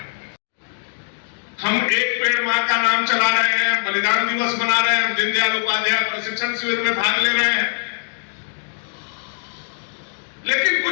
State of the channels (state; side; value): silent; right; digital silence